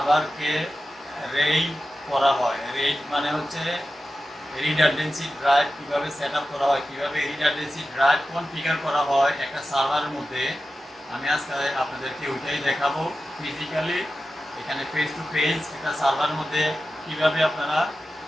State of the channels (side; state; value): both; normal; correlation 0.93